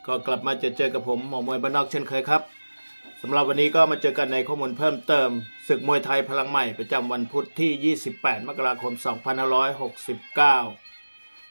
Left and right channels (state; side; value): inverted; both; correlation -1.00